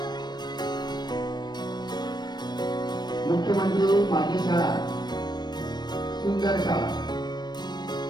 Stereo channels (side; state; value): right; late; 0.21 ms